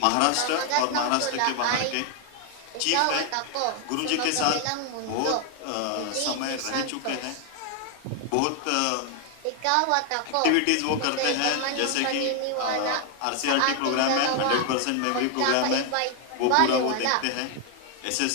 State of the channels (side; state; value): both; different; correlation 0.00